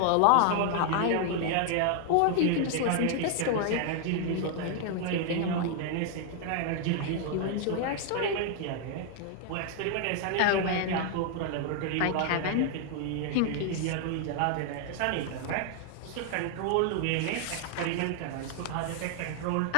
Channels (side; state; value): both; different; correlation 0.00